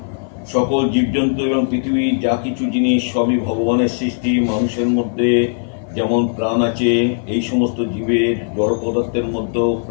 সকল জীবজন্তু এবং পৃথিবীর যা কিছু জিনিস সবই ভগবানের সৃষ্টি। মানুষের মধ্যে যেমন প্রাণ আছে, এই সমস্ত জীবের জড় পদার্থের মধ্যেও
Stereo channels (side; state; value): right; silent; 57 dB below the other